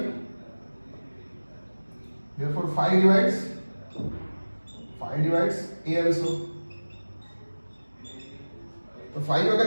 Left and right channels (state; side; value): inverted; both; correlation -1.00